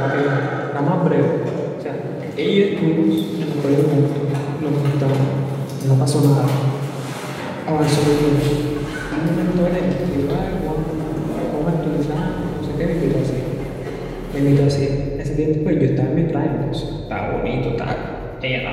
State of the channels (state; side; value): identical; both; correlation 1.00